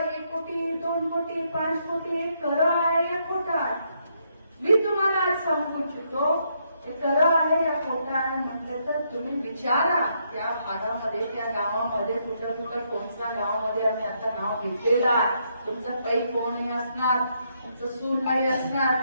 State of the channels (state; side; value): inverted; both; correlation -0.76